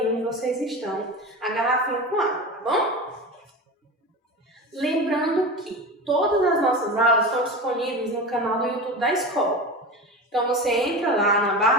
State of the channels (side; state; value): both; normal; correlation 0.27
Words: onde vocês estão a garrafinha com água, tá bom? Lembrando que todas as nossas aulas estão disponíveis no canal do YouTube da escola. Então você entra lá na